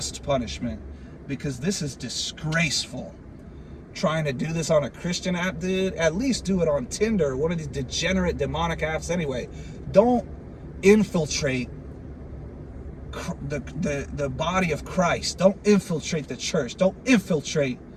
punishment, because this is disgraceful. Trying to do this on a Christian app, dude, at least do it on Tinder, one of these degenerate demonic apps anyway. Don't infiltrate the body of Christ. Don't infiltrate the church. Don't infiltrate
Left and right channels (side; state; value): both; identical; correlation 1.00